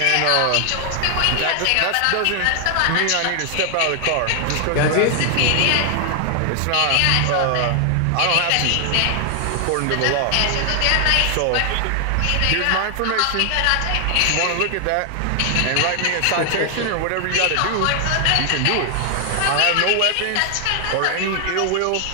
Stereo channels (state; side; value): different; both; correlation 0.00